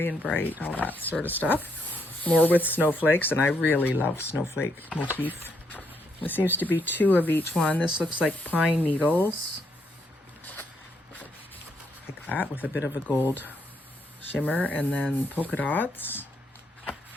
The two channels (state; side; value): normal; both; correlation 0.75